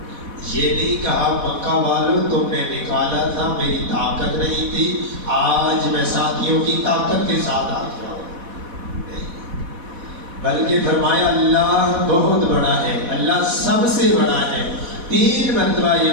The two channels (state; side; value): late; left; 4.1 ms